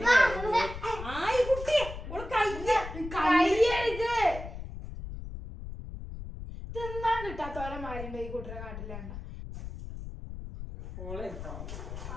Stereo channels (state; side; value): noise; left; rumble, 9 dB below the sound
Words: താത്തോലെ മാരുണ്ട് ഈ കുട്ടിയുടെ കാട്ടിലാണ്. ഓളെടുത്തോ